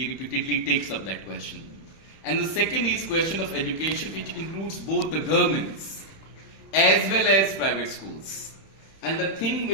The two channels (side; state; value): right; late; 31 ms